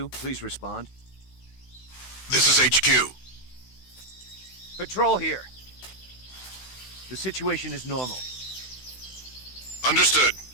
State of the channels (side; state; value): right; late; 16 ms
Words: Please respond. This is HQ. Patrol here. The situation is normal. Understood.